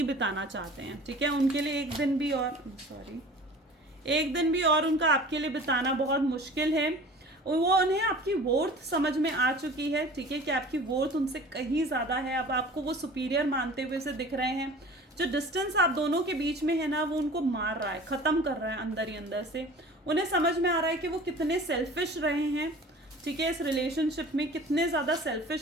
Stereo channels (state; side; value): normal; both; correlation 0.42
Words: बिताना चाहते हैं, ठीक है। उनके लिए एक दिन भी और एक दिन भी और उनका आपके लिए बिताना बहुत मुश्किल है। वो उन्हें आपकी वर्थ समझ में आ चुकी है, ठीक है, कि आपकी वर्थ उनसे कहीं ज़्यादा है। अब आपको वो सुपीरियर मानते हुए से दिख रहे हैं। जो डिस्टेंस आप दोनों के बीच में है ना, वो उनको मार रहा है, ख़त्म कर रहा है अंदर ही अंदर से। उन्हें समझ में आ रहा है कि वो कितने सेल्फिश रहे हैं, ठीक है, इस रिलेशनशिप में कितने ज़्यादा